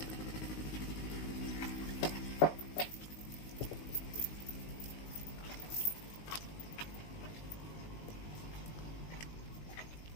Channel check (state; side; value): late; right; 19 ms